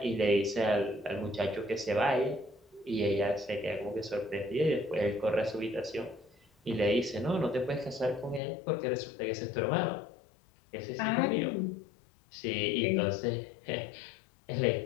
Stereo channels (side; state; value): right; drops out; at 8.4 s